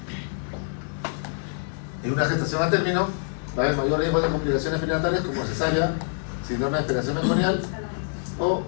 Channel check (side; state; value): right; silent; digital silence